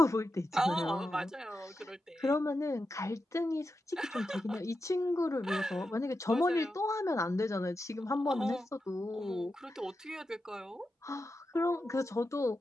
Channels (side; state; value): both; normal; correlation 0.89